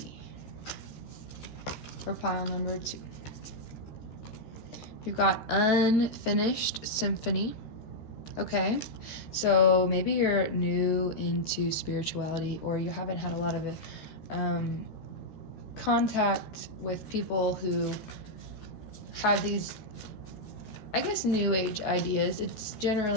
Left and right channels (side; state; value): right; late; 14 ms